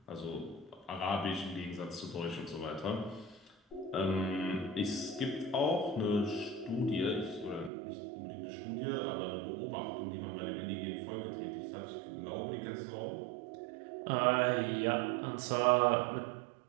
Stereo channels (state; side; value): drops out; left; at 7.7 s